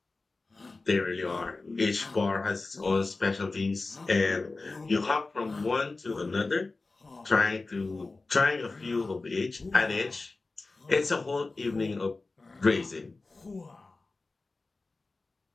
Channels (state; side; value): quieter; right; 3.5 dB